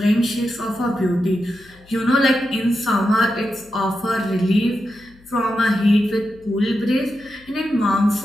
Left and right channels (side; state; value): left; noise; hum, 27 dB below the sound